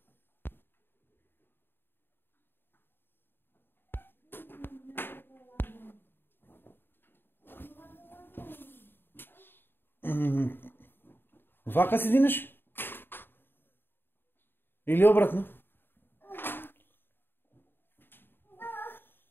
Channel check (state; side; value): late; right; 0.10 ms